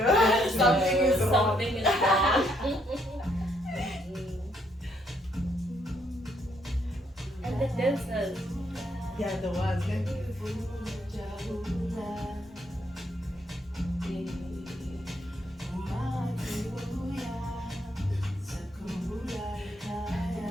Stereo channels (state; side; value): normal; both; correlation 0.72